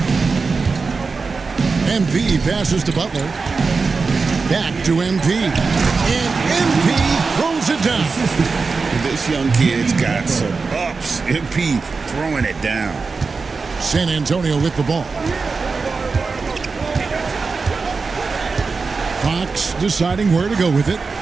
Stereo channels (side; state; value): left; quieter; 4.5 dB